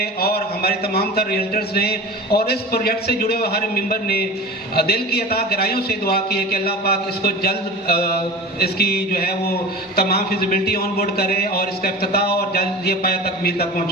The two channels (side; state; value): both; normal; correlation 0.35